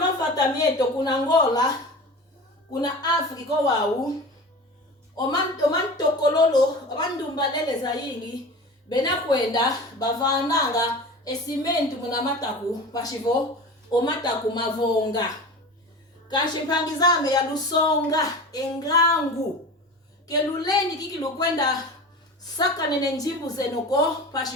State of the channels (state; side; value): normal; both; correlation 0.34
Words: kuna Angola, kuna Afrika wau, omanto kololo, omandumbalele zaini, bena kwenda, bavananga, esimentu muna mataku, pashivo, omataku mavonga. Kanshipangizame ya lusonga, engangu, keluleni kikilu kwenda, saka nene njimbu zenoko,